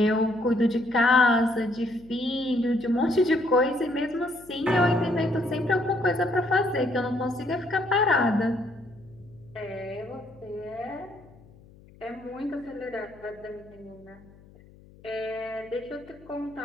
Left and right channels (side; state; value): left; noise; hum, 24 dB below the sound